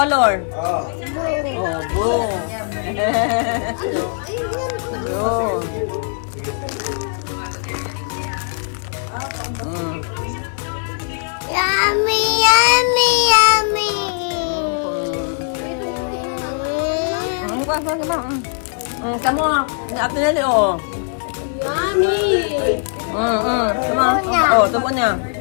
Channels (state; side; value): silent; right; 61 dB below the other